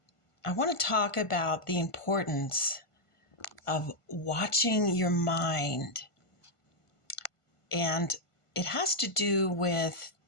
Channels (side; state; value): right; late; 1.5 ms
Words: I want to talk about the importance of watching your mind. And it has to do with